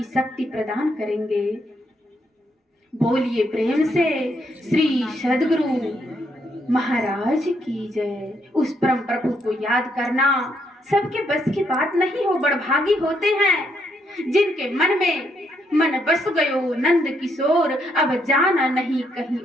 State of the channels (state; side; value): normal; both; correlation 0.75